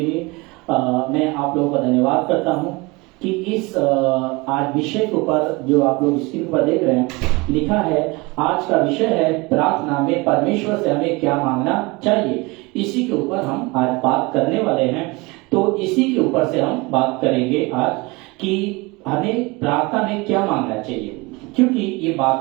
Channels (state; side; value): quieter; left; 24.8 dB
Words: लिए मैं आप लोगों का धन्यवाद करता हूं कि इस आज विषय के ऊपर जो आप लोग स्क्रीन पर देख रहे हैं लिखा है। आज का विषय है प्रार्थना में परमेश्वर से हमें क्या मांगना चाहिए। इसी के ऊपर हम आज बात करने वाले हैं। तो इसी के ऊपर से हम बात करेंगे आज कि हमें प्रार्थना में क्या मांगना चाहिए, क्योंकि ये